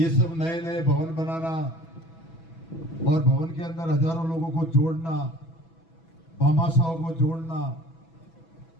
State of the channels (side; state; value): right; late; 6.1 ms